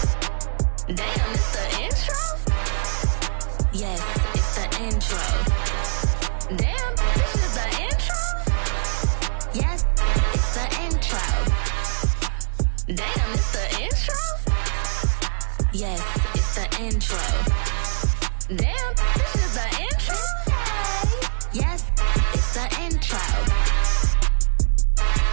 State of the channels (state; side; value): silent; left; digital silence